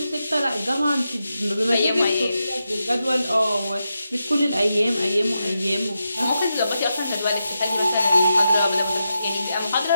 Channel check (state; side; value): inverted; both; correlation -0.87